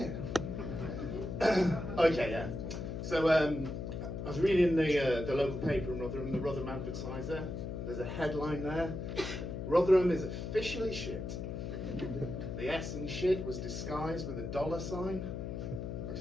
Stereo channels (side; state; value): left; noise; hum, 5 dB below the sound